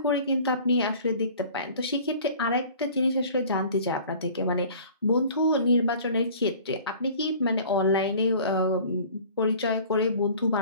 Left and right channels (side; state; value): both; inverted; correlation -0.46